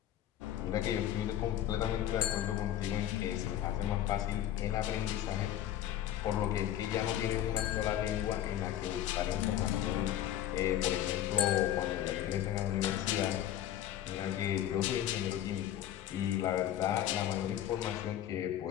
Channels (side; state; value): right; quieter; 11.8 dB